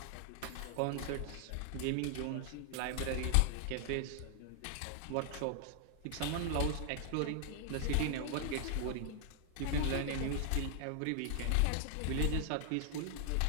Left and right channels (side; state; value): both; different; correlation 0.00